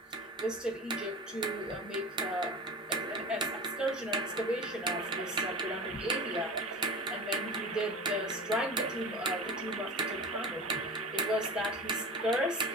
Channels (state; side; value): normal; both; correlation 0.32